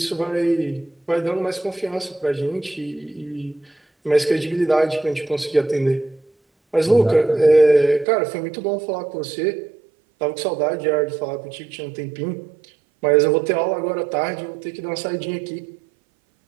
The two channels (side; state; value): left; drops out; at 8.1 s